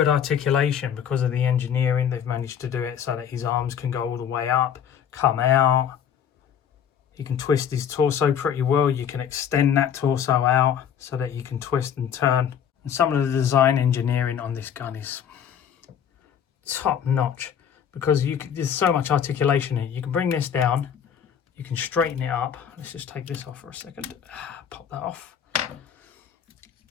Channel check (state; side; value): quieter; right; 8.5 dB